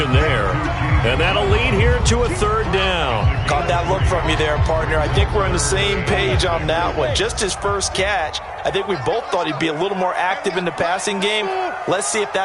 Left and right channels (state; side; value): identical; both; correlation 1.00